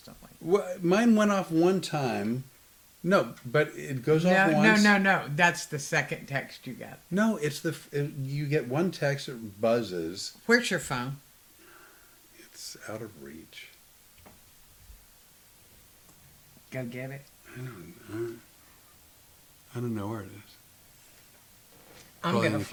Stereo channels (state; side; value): identical; both; correlation 1.00